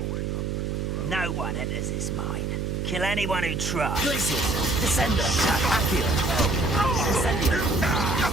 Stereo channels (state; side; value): noise; right; hum, 2 dB below the sound